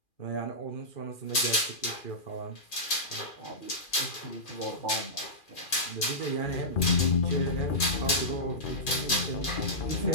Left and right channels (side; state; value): right; late; 2.4 ms